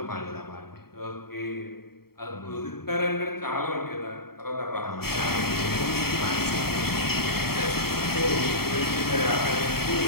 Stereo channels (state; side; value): late; right; 0.95 ms